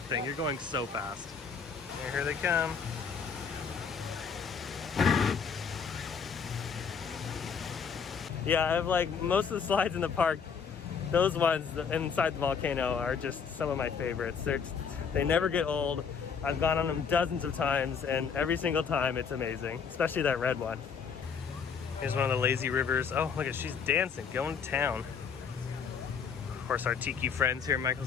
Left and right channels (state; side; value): quieter; right; 6.3 dB